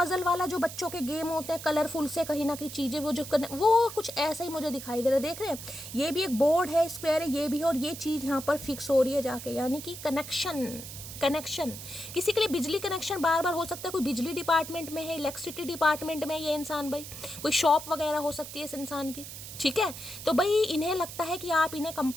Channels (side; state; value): right; noise; hiss, 11 dB below the sound